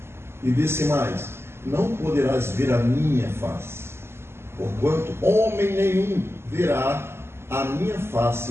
E disse mais: não poderás ver a minha face, porquanto homem nenhum verá a minha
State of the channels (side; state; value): left; late; 0.12 ms